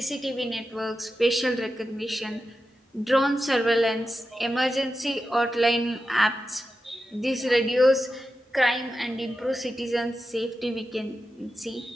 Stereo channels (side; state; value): both; normal; correlation 0.91